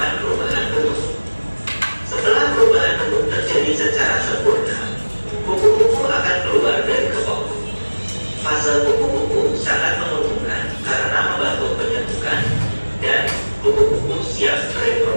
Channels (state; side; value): inverted; both; correlation -1.00